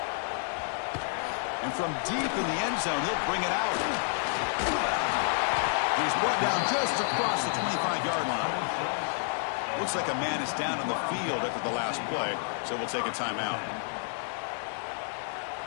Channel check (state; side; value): silent; right; digital silence